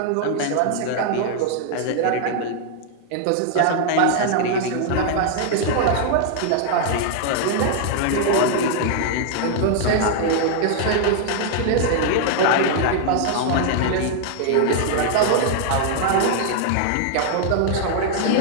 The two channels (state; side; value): different; both; correlation 0.00